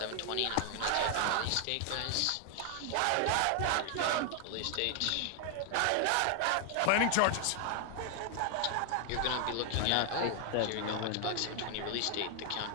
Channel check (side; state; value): both; different; correlation 0.00